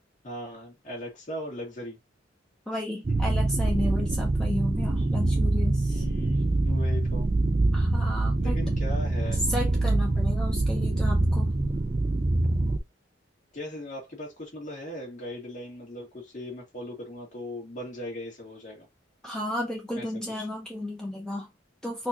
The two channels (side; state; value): both; normal; correlation 0.91